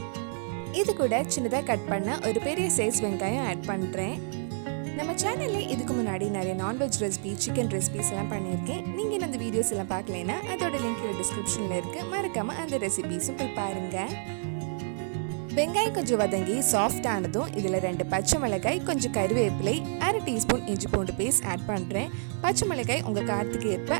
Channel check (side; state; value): left; silent; 59 dB below the other